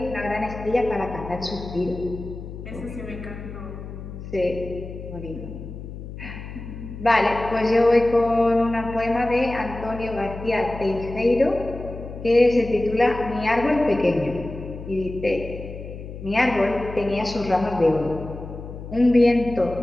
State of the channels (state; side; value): noise; left; hum, 11 dB below the sound